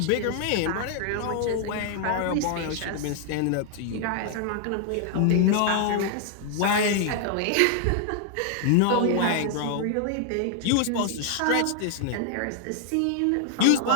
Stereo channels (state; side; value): different; both; correlation 0.00